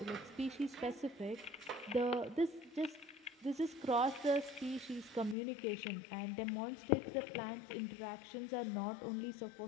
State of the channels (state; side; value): drops out; right; at 5.4 s